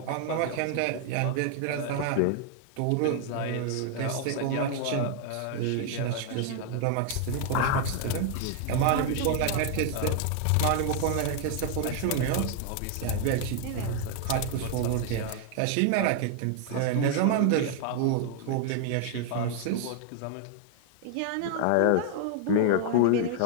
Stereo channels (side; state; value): both; different; correlation 0.00